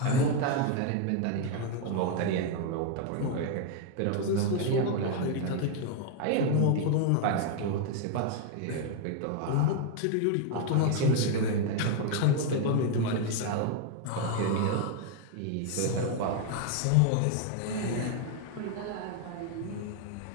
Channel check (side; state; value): both; different; correlation 0.01